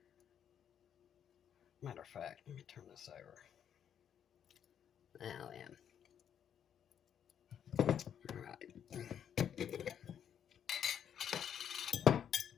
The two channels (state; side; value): quieter; right; 8.8 dB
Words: Matter of fact, let me turn this over. Now then. All right.